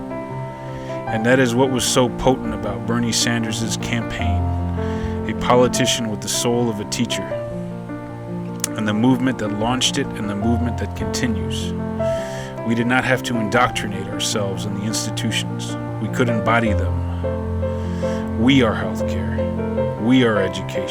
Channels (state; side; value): identical; both; correlation 1.00